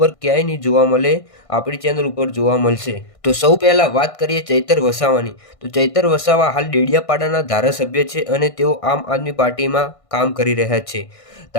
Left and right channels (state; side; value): late; right; 1.5 ms